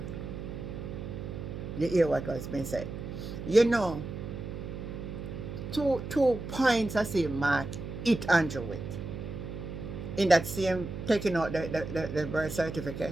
You hear what has been said. You know, two points I see Mark hit Andrew with. In that same, taking out the birth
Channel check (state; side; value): noise; right; hum, 7 dB below the sound